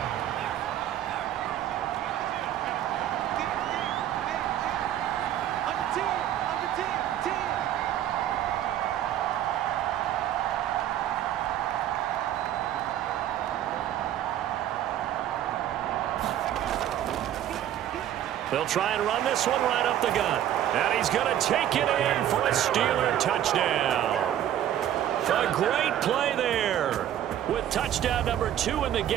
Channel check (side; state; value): left; quieter; 11.4 dB